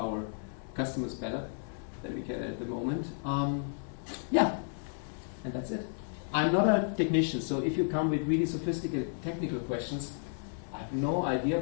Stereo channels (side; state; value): right; silent; 56 dB below the other